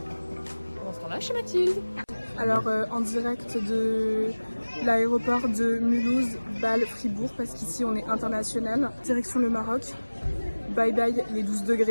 Pendant ce temps-là, chez Mathilde. Alors en direct de l'aéroport de Mulhouse, Bâle, Fribourg, parce qu'ici on est international. Direction le Maroc. Bye bye les 12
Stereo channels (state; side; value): inverted; both; correlation -1.00